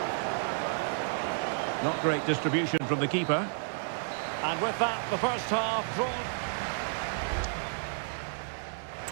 Not great distribution from the keeper. And with that, the first half drawn.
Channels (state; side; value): silent; left; 57 dB below the other